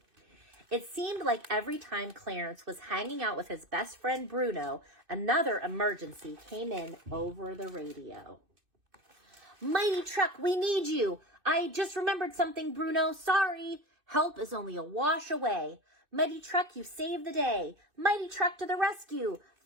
It seemed like every time Clarence was hanging out with his best friend Bruno, another emergency came in over the radio. Mighty Truck, we need you. I just remembered something, Bruno. Sorry. Help is only a wash away. Mighty Truck, you saved the day. Mighty Truck to the rescue.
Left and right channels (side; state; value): left; late; 2.6 ms